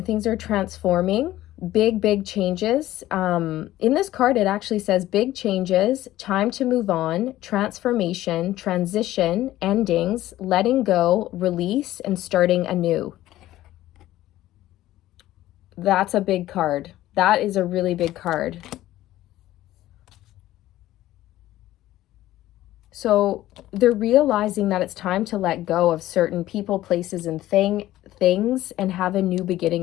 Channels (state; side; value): quieter; right; 14.9 dB